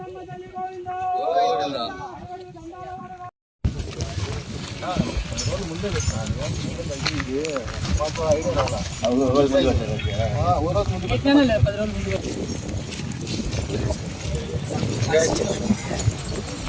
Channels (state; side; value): identical; both; correlation 1.00